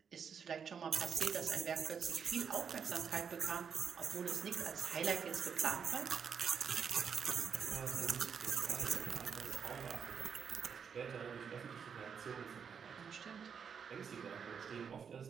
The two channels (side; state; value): left; quieter; 6.9 dB